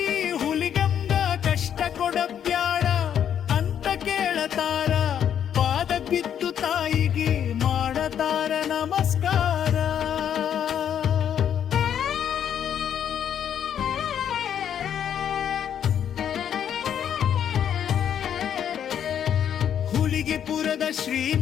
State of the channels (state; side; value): quieter; right; 9.1 dB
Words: ಹುಲಿಗಂಗ ಕಷ್ಟ ಕೊಡಬ್ಯಾಡ ಅಂತ ಕೇಳತಾರ, ಪಾದ ಬಿದ್ದು ತಾಯಿಗೆ ಮಾಡತಾರ ನಮಸ್ಕಾರ. ಹುಲಿಗಿಪುರದ